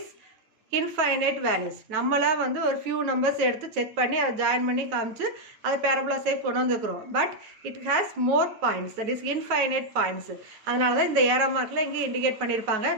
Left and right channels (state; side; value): late; left; 9.2 ms